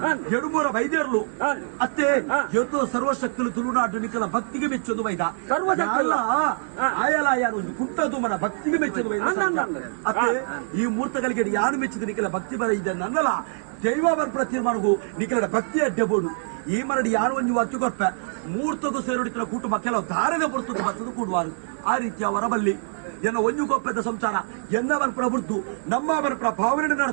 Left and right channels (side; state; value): left; silent; digital silence